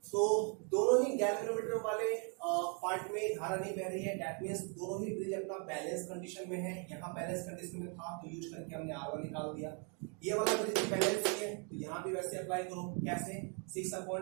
तो दोनों ही गैल्वेनोमीटर वाले पार्ट में धारा नहीं बह रही है, दैट मींस दोनों ही ब्रिज अपना बैलेंस कंडीशन में है। यहाँ बैलेंस कंडीशन में था तो यूज करके हमने R1 निकाल दिया। ये वाला ब्रिज बैलेंस है तो यहाँ भी वैसे अप्लाई करो, कैसे,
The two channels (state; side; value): quieter; left; 38.1 dB